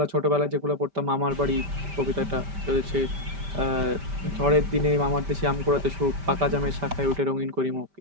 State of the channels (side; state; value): left; late; 5.1 ms